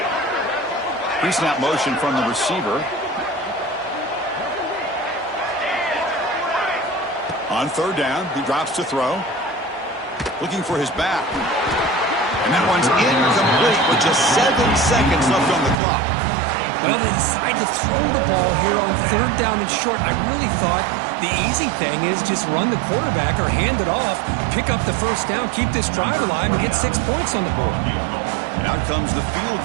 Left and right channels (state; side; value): drops out; left; at 15.8 s